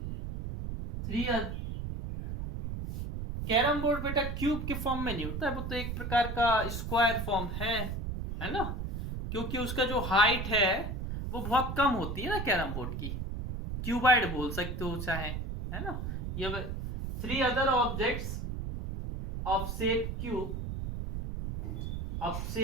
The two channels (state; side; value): noise; right; rumble, 4 dB below the sound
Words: कैरम बोर्ड बेटा क्यूब के फॉर्म में नहीं होता है, वो तो एक प्रकार का स्क्वायर फॉर्म है ना? क्योंकि उसका जो हाइट है वो बहुत कम होती है ना कैरम बोर्ड की। क्यूबाइड बोल सकते हो चाहे, है ना। ये 3 other objects of shape cube of